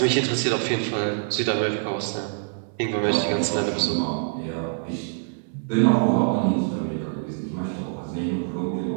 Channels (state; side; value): silent; left; 62 dB below the other